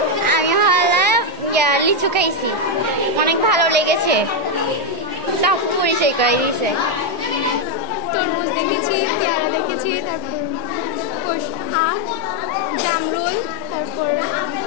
আমি হলাম লিচু খাইছি। অনেক ভালো লেগেছে, সব পরিচয় করে দিয়েছে। তরমুজ দেখেছি, পেয়ারা দেখেছি, তারপর আম, জামরুল, তারপর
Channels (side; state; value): both; normal; correlation 0.02